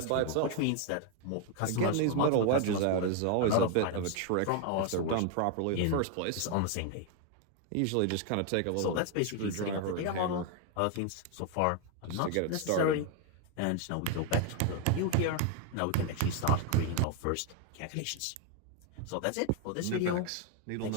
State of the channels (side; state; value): both; different; correlation 0.01